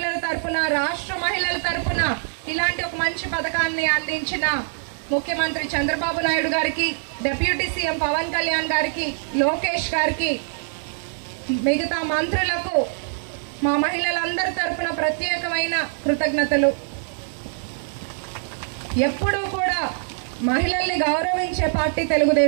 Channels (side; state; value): left; silent; digital silence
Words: తరపున, రాష్ట్ర మహిళల తరపున ఇలాంటి ఒక మంచి పథకాన్ని అందించిన ముఖ్యమంత్రి చంద్రబాబు నాయుడు గారికి, డిప్యూటీ సీఎం పవన్ కళ్యాణ్ గారికి, లోకేష్ గారికి, మిగతా మంత్రులకు మా మహిళలందరి తరపున ప్రత్యేకమైన కృతజ్ఞతలు. ఎప్పుడూ కూడా మహిళల్ని గౌరవించే పార్టీ